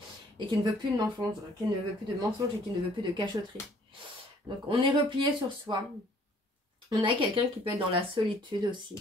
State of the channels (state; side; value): normal; both; correlation 0.59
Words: Et qui ne veut plus de mensonges, qui ne veut plus de mensonges et qui ne veut plus de cachotterie. Donc, on est replié sur soi. On a quelqu'un qui peut être dans la solitude